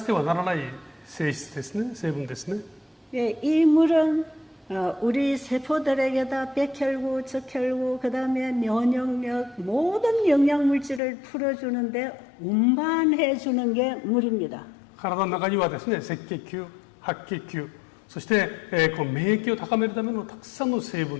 てはならない性質ですね、成分ですね。 예, 이 물은 우리 세포들에게다 백혈구, 적혈구, 그 다음에 면역력, 모든 영양물질을 풀어주는데 운반해 주는 게 물입니다. 体の中にはですね、赤血球、白血球、そして、この免疫を高めるためのたくさんの成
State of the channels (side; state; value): right; drops out; at 11.0 s